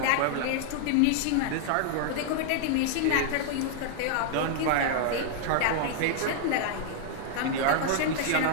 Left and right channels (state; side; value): different; both; correlation -0.01